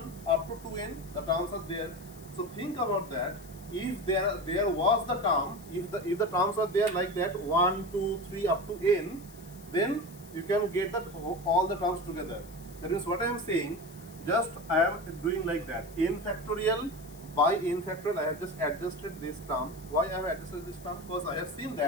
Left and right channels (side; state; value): left; noise; hiss, 21 dB below the sound